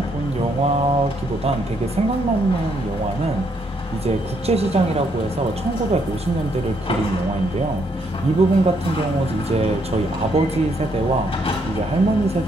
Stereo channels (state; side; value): normal; both; correlation 0.73